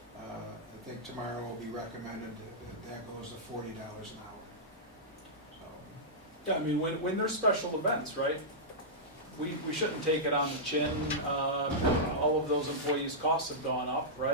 I think tomorrow will be recommended that goes to $40 an hour, so. Yeah, I mean, when there's special events, right, we shouldn't take it on the chin. All of those employees' costs have gone up,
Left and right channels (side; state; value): both; normal; correlation -0.12